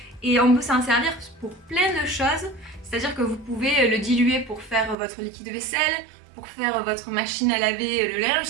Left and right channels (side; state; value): left; drops out; at 5.0 s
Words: et on peut s'en servir pour plein de choses. C'est-à-dire que vous pouvez le diluer pour faire votre liquide vaisselle, pour faire votre machine à laver le linge.